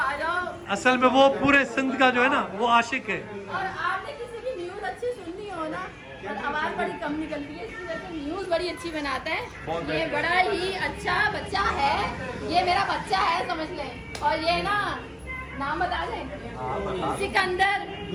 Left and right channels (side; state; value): both; identical; correlation 1.00